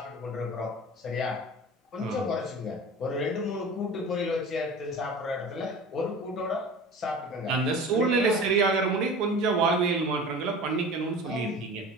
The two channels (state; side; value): normal; both; correlation 0.37